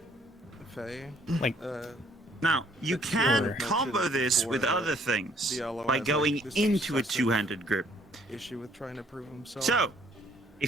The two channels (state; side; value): normal; both; correlation 0.63